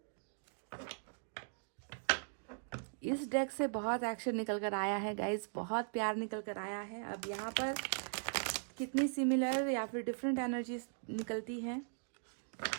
इस डेक से बहुत एक्शन निकल कर आया है गाइज, बहुत प्यार निकल कर आया है। अब यहाँ पर कितनी सिमिलर या फिर डिफरेंट एनर्जीज निकलती हैं।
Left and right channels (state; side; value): silent; left; digital silence